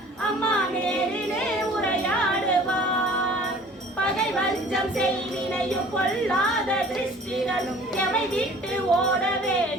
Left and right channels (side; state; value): both; normal; correlation 0.49